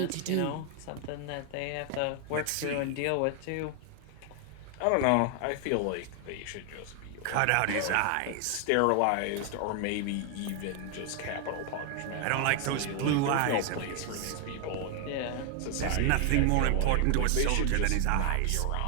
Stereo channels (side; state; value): both; different; correlation 0.00